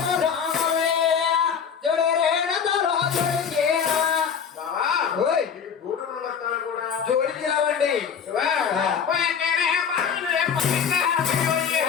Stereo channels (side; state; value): right; quieter; 7.1 dB